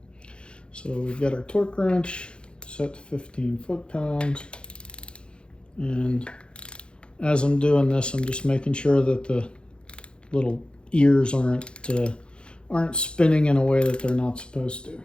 So we've got our torque wrench set to 15 foot-pounds. And as I'm doing this, I'm just making sure that the little ears aren't spinning in a way that they're not supposed to.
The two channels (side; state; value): right; late; 0.054 ms